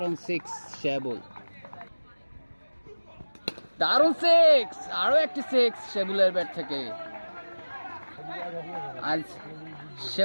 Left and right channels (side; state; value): both; inverted; correlation -1.00